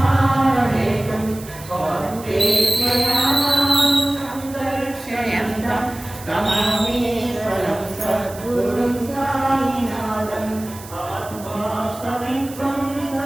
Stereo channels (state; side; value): noise; right; hiss, 17 dB below the sound